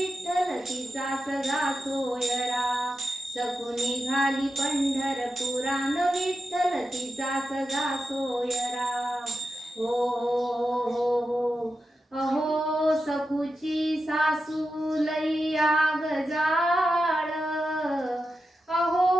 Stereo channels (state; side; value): normal; both; correlation 0.89